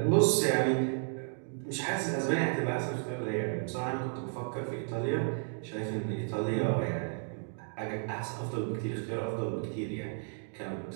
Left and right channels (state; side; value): silent; left; 56 dB below the other